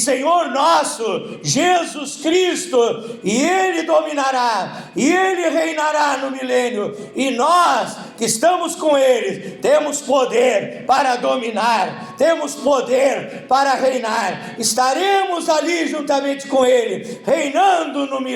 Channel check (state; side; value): identical; both; correlation 1.00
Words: nosso, Jesus Cristo, e ele dominará, e ele reinará no milênio, e nós que estamos com ele, temos poder para dominar, temos poder para reinar, estaremos ali juntamente com ele, reinando no